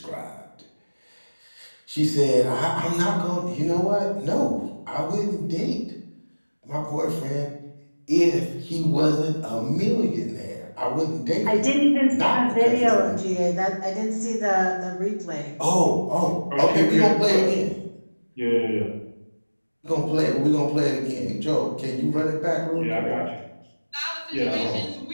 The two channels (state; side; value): inverted; both; correlation -1.00